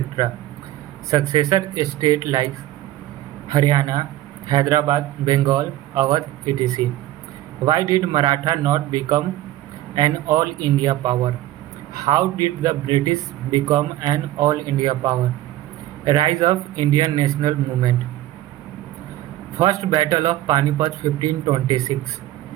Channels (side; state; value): left; quieter; 14.7 dB